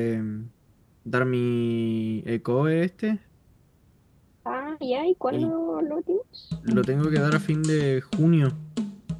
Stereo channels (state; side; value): identical; both; correlation 1.00